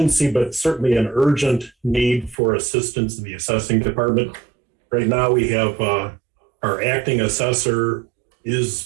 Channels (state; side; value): drops out; left; at 2.4 s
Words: but certainly an urgent need for assistance in the assessing department. Right now we have our acting assessor